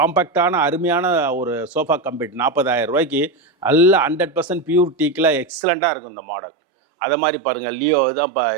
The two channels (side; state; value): left; drops out; at 5.5 s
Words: அருமையான ஒரு சோஃபா கம்பெட் 40,000 ரூபாய்க்கு நல்ல 100% பியூர் டீக்கில் எக்ஸலண்ட்டாக இருக்கும் இந்த மாடல். அதை மாதிரி பாருங்கள் லியோ தான்